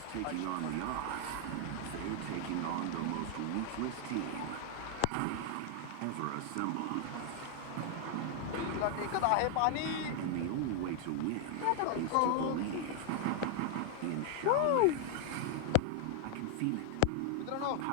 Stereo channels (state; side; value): different; both; correlation 0.00